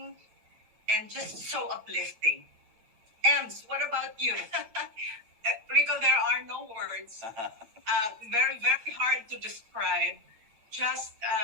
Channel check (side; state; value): left; late; 9.0 ms